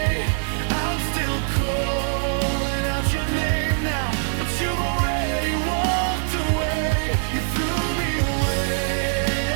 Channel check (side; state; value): left; silent; 63 dB below the other